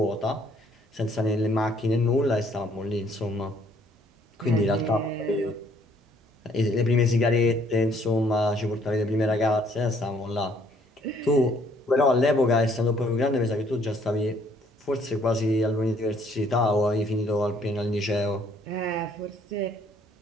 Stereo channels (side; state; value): both; normal; correlation 0.63